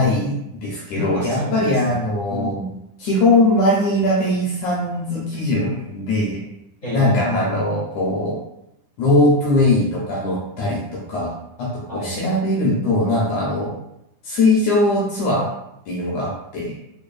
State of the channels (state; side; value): late; right; 9.8 ms